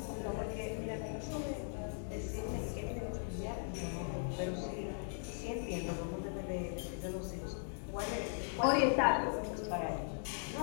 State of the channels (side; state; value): right; silent; digital silence